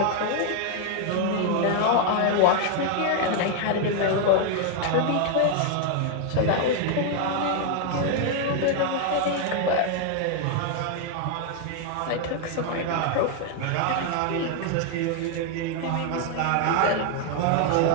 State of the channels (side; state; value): both; different; correlation 0.00